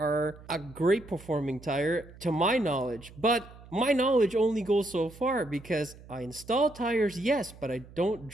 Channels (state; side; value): noise; right; hum, 20 dB below the sound